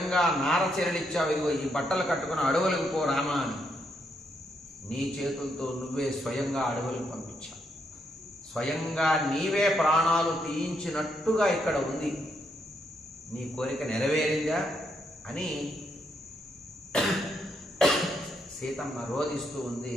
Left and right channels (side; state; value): both; normal; correlation 0.77